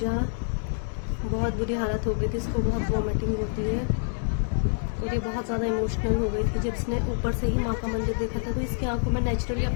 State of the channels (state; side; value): silent; right; digital silence